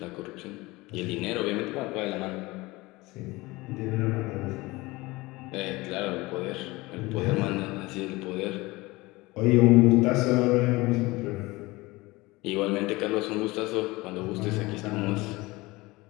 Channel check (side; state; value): right; quieter; 21.7 dB